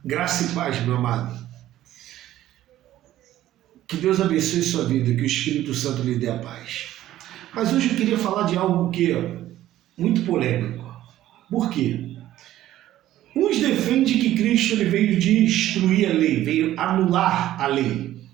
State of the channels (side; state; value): left; quieter; 13.7 dB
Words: Graça e paz, meu amado. Que Deus abençoe sua vida, que o Espírito Santo lhe dê a paz. Mas hoje eu queria falar de algo que é muito polêmico. Por quê? Uns defendem que Cristo ele veio destruir a lei, veio anular a lei.